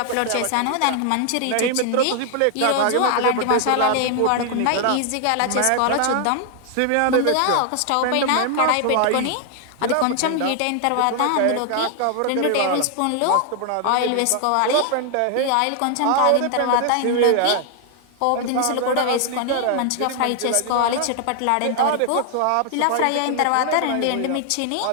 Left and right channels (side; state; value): both; different; correlation 0.00